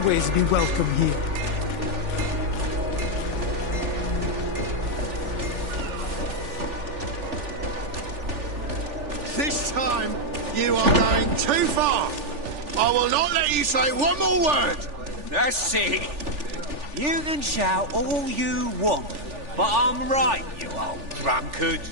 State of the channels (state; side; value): late; left; 3.4 ms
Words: be welcome here. This time, you are going too far. I will not let you say one more word. That's it. You can shout all you want, but I'm right, you old drunkard.